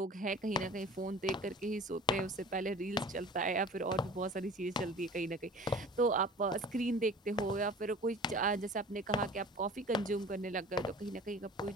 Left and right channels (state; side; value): normal; both; correlation 0.42